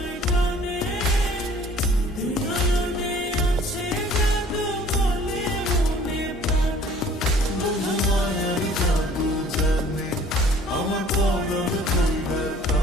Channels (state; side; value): normal; both; correlation 0.53